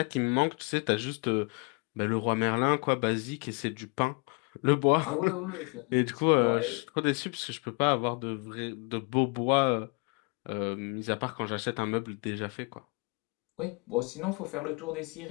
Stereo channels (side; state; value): right; quieter; 32.5 dB